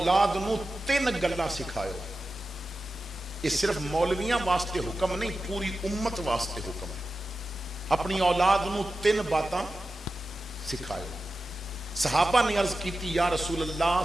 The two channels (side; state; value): both; normal; correlation 0.93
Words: نو 3 گلاں سکھائیو. یہ صرف مولویاں واسطے حکم نہیں, پوری امت واسطے حکم ہے. اپنی اولاد نو 3 باتاں سکھائیو. صحابہ نے عرض کی تھی یا رسول اللہ